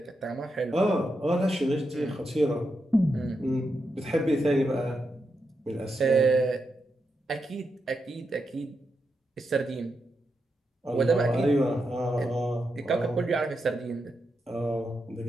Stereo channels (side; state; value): both; normal; correlation 0.85